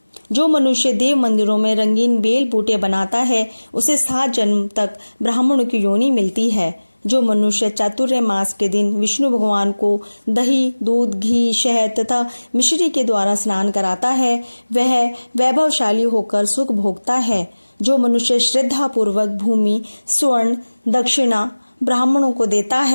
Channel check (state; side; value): inverted; both; correlation -1.00